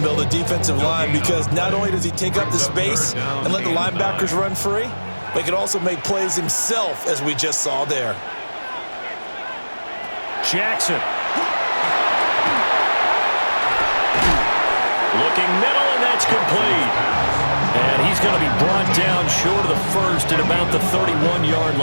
of the defensive line, because not only does he take up the space and let the linebackers run free, but he can also make plays himself, as we just saw there. Jackson. Looking middle, and that's complete. And he's going to be brought down short of the first at about the 31-yard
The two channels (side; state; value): both; inverted; correlation -1.00